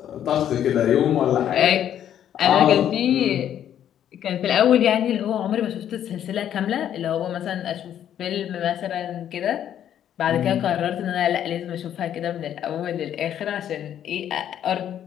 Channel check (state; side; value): quieter; right; 10.3 dB